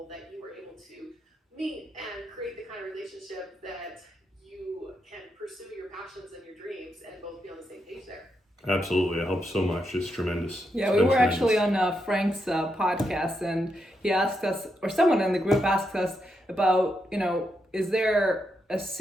that you were able to meet and create the kind of relationship that you can pursue your passions and your dreams and both be on the same page there. Absolutely. It helps so much. It's tremendous. Yeah, we were actually on Frank's podcast, and he asked us, or someone in the group asked us about, is there a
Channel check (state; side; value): normal; both; correlation 0.82